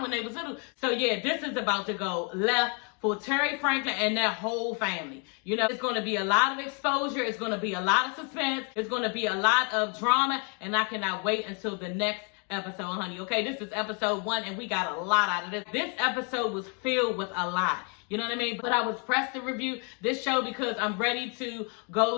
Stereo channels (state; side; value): quieter; right; 37.3 dB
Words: when they was little? So yeah, this is about to go left for Terry Franklin and their whole family. It's going to be a lot of exposure. It's going to be a lot of suspense. It's going to be a lot of drama, and I cannot wait until the next episode, honey. Okay, this is episode 1, and we got a lot out of this. This episode was filled with a lot. You know what I mean? But I was pressed to review this show because I'm ready to